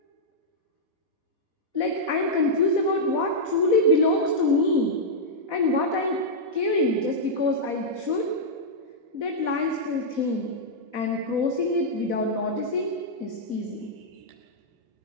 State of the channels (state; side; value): late; left; 4.1 ms